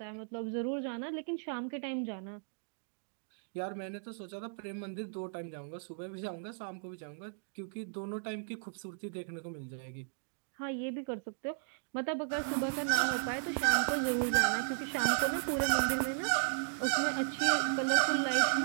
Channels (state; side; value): silent; left; digital silence